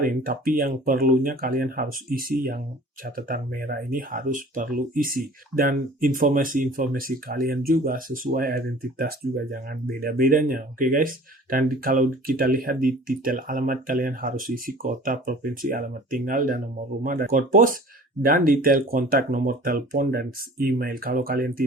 tapi yang perlunya kalian harus isi yang catatan merah ini harus perlu isi. Dan informasi-informasi kalian juga sesuai identitas juga, jangan beda-bedanya. Oke guys. Dan kalau kita lihat di detail alamat, kalian harus isi kota, provinsi, alamat tinggal, dan nomor rumah, dan kode pos, dan detail kontak, nomor telepon, dan email. Kalau kalian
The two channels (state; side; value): normal; both; correlation 0.46